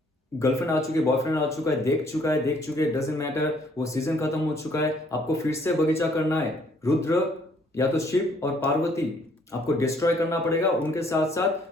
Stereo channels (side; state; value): both; normal; correlation 0.63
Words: गर्लफ्रेंड आ चुकी है, बॉयफ्रेंड आ चुका है, देख चुके, डजंट मैटर, वो सीजन खत्म हो चुका है, आपको फिर से बगीचा करना है। रुद्र या तो शिव और पार्वती आपको डिस्ट्रॉय करना पड़ेगा। उनके साथ